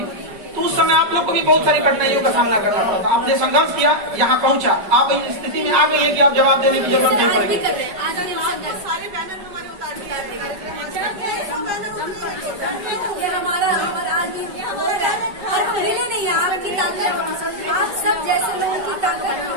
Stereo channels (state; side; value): late; left; 5.2 ms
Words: तो उस समय आप लोग को भी बहुत सारी कठिनाइयों का सामना करना पड़ा था। आपने संघर्ष किया, यहाँ पहुँचा, आप इस स्थिति में आ गई है कि आप जवाब देने की जरूरत नहीं पड़ेगी। सारे बैनर हमारे उतार दिए हमारा आज और पहले नहीं, आपकी ताकत, आप सब जैसे लोगों की ताकत।